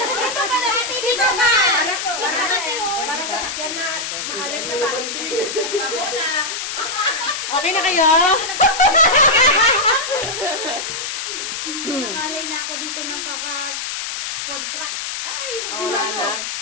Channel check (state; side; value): noise; left; hiss, 4 dB below the sound